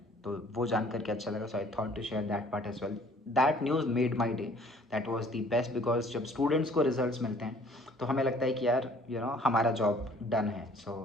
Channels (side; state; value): both; normal; correlation 0.55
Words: तो वो जान करके अच्छा लगा. So I thought to share that part as well. That news made my day. That was the best because जब स्टूडेंट्स को रिजल्ट्स मिलते हैं तो हमें लगता है कि यार हमारा जॉब डन है. So